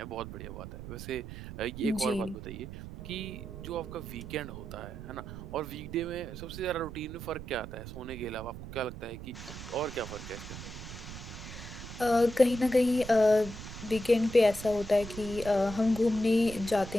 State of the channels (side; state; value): right; noise; rumble, 11 dB below the sound